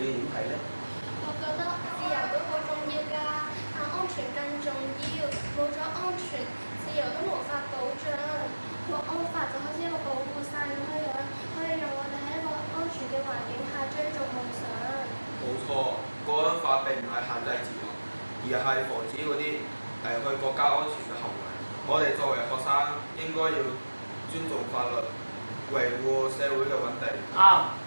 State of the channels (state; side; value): inverted; both; correlation -1.00